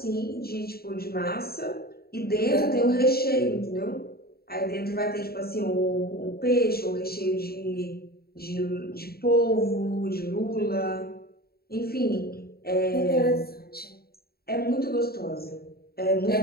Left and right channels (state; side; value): late; right; 0.45 ms